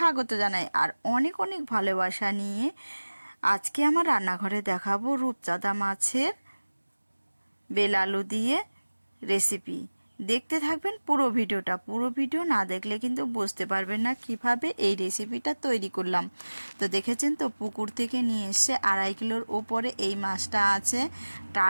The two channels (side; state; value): both; inverted; correlation -1.00